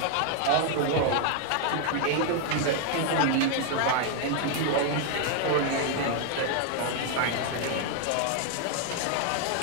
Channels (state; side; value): different; both; correlation 0.00